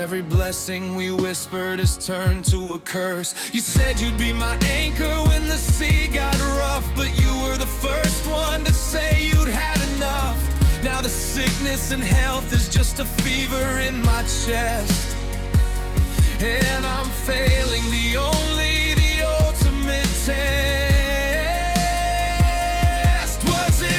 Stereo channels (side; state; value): both; identical; correlation 1.00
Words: blessing we whispered has turned to a curse. You said you'd be my anchor when the sea got rough, but you were the first one to say you'd had enough. Now the sickness and health is just a fever in my chest, and I'm failing the ultimate test. Was